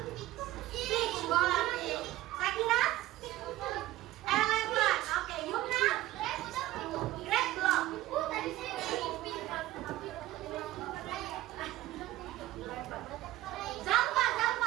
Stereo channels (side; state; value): left; quieter; 16.1 dB